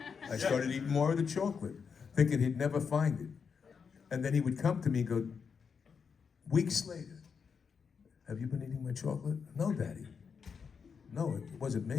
I started eating more of the chocolate, thinking he'd never find it. And then he would come to me and go, weeks later, have you been eating my chocolate? No, Daddy. No, it wasn't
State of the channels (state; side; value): quieter; right; 6.1 dB